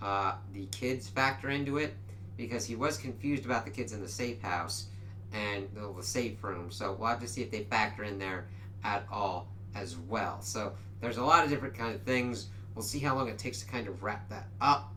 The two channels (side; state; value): both; identical; correlation 1.00